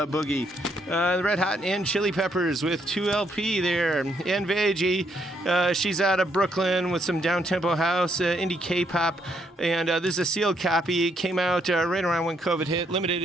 The Red Hot and Chili Peppers with 2 LP there, and Veggie. She's out of Brooklyn with some down-tempo house, indie K-pop, and this is a sealed copy. It came out right around when COVID hit. Limited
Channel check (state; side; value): normal; both; correlation 0.74